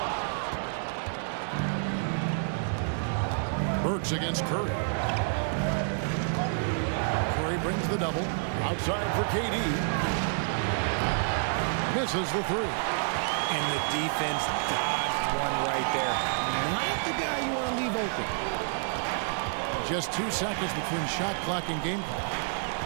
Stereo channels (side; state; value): left; silent; digital silence